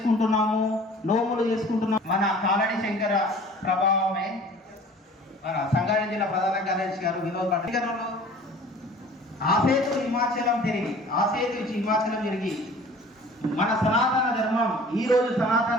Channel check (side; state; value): both; normal; correlation 0.47